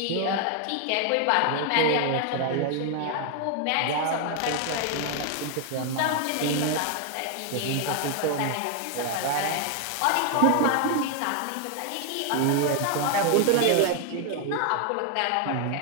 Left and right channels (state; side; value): different; both; correlation 0.00